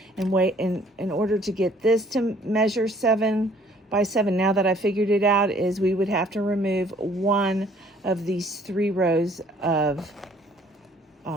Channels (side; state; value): both; normal; correlation 0.58